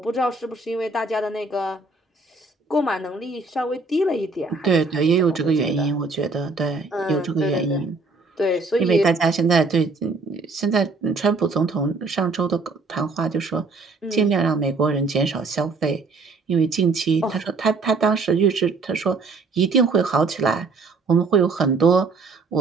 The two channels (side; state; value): left; quieter; 3.8 dB